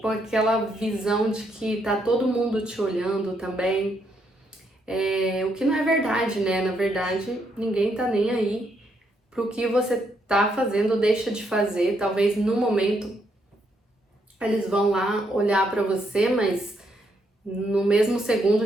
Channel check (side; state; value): both; normal; correlation 0.76